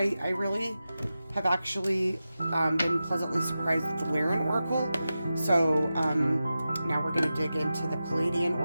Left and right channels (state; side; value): inverted; both; correlation -0.93